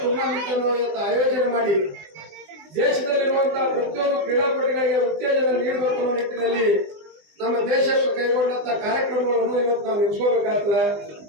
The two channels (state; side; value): late; left; 20 ms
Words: ಟೂರ್ನಮೆಂಟ್ ಅನ್ನು ಇವತ್ತು ಆಯೋಜನೆ ಮಾಡಿ ದೇಶದಲ್ಲಿರುವಂತಹ ಪ್ರತಿಯೊಂದು ಕ್ರೀಡಾಪಟುಗಳಿಗೆ ಉತ್ತೇಜನ ನೀಡಬೇಕು ಅನ್ನೋ ನಿಟ್ಟಿನಲ್ಲಿ ನಮ್ಮ ದೇಶಕ್ಕೆ ಕೈಗೊಂಡಂತ ಕಾರ್ಯಕ್ರಮಗಳನ್ನು ಇವತ್ತು ನಾವು ನೆನೆಸ್ಕೋಬೇಕಾಗ್ತದೆ.